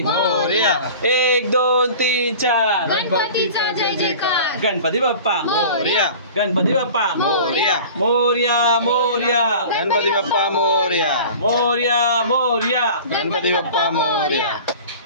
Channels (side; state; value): both; inverted; correlation -0.40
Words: मोरया. 1 2 3 4 गणपतीचा जय जयकार. गणपती बाप्पा मोरया. गणपती बाप्पा मोरया. मोर्या मोर्या गणपती बाप्पा मोरया. मोर्या मोर्या गणपती बाप्पा मोरया.